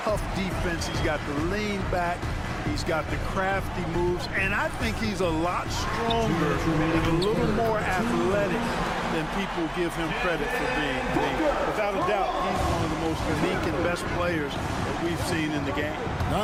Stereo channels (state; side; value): identical; both; correlation 1.00